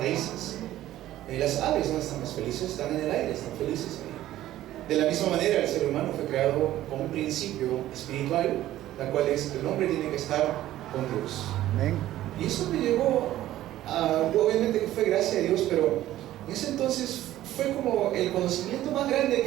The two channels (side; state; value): left; quieter; 14.1 dB